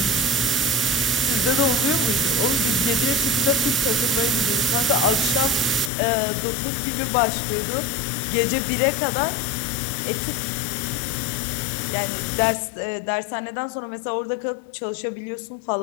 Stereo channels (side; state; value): right; drops out; at 5.9 s